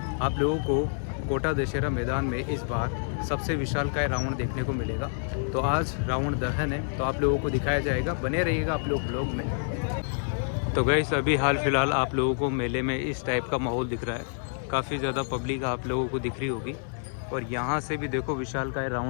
लोगों को कोटा दशहरा मैदान में इस बार सबसे विशालकाय रावण देखने को मिलेगा। तो आज रावण दहन है, तो आप लोगों को दिखाया जाएगा। बने रहिएगा आप लोग ब्लॉग में। तो गाइज़ अभी हाल फ़िलहाल आप लोगों को मेले में इस टाइप का माहौल दिख रहा है। काफ़ी ज़्यादा पब्लिक आप लोगों को दिख रही होगी। और यहाँ से भी देखो विशालकाय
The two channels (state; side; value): silent; right; digital silence